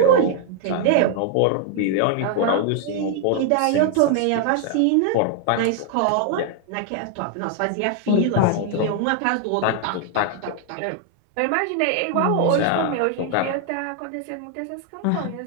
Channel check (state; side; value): different; both; correlation 0.00